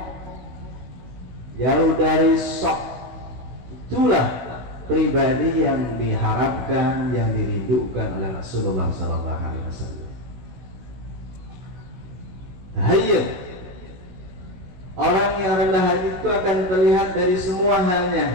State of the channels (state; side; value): late; left; 16 ms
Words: jauh dari sok. Itulah pribadi yang diharapkan, yang dirindukan oleh Rasulullah SAW. Hayyin, orang yang rendah hati itu akan terlihat dari semua halnya,